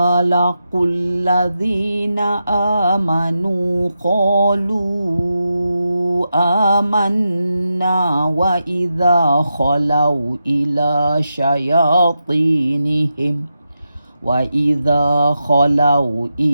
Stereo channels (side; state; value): both; inverted; correlation -0.87